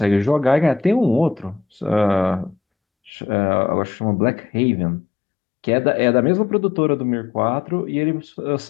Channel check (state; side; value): drops out; right; at 3.1 s